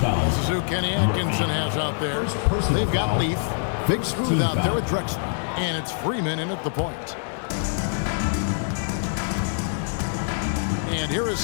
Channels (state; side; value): silent; right; digital silence